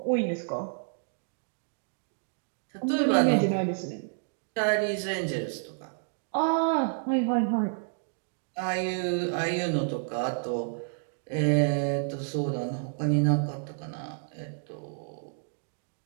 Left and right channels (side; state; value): left; silent; digital silence